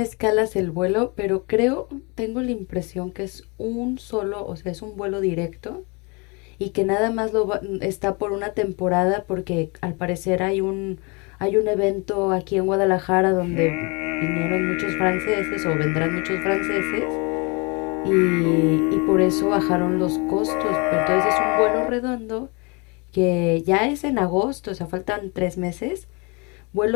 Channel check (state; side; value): quieter; right; 30.2 dB